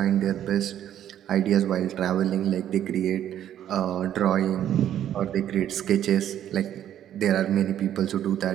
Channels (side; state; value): left; quieter; 10.9 dB